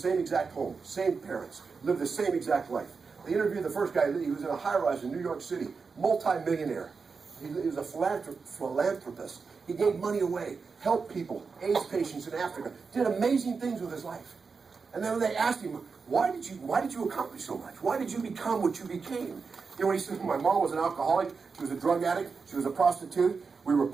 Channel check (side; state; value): left; quieter; 5.0 dB